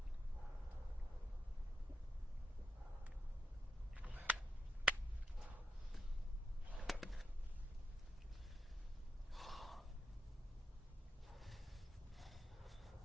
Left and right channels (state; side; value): normal; both; correlation 0.84